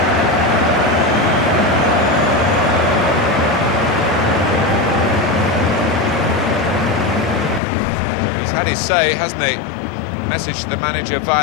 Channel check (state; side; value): drops out; right; at 7.6 s